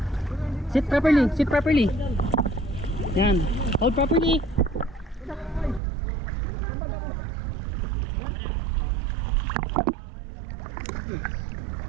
Sit properly, sit properly. Yan. Hold properly.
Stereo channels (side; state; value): left; drops out; at 5.8 s